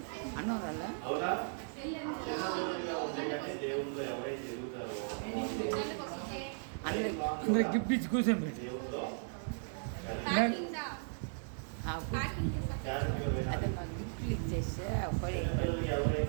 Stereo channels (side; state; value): left; silent; 53 dB below the other